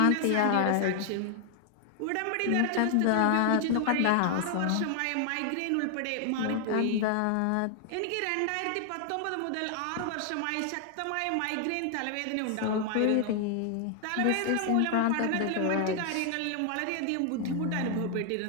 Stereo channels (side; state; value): both; different; correlation 0.00